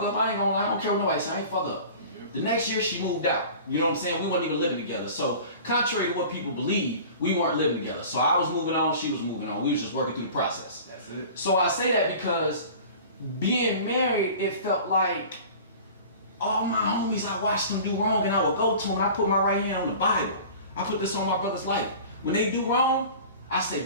care what nobody say, I ain't fuck up. The next year, she moved out. You know what I'm saying? We weren't even living together. So, contrary to what people believe, we weren't living together. So, I was moving on, she was moving on. We was just working through the process. That's it. So, I say that because being married, it felt like all my homies, I watched them do wrong, and I would go to them, and I put my right hand on the Bible. I put this on my brother's life. When they do wrong, I say,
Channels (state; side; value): inverted; both; correlation -0.41